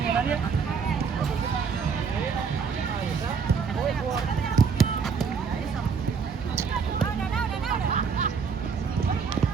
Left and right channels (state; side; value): quieter; left; 5.9 dB